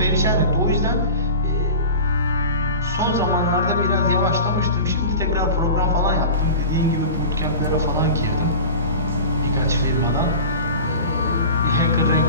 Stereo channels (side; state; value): both; inverted; correlation -0.34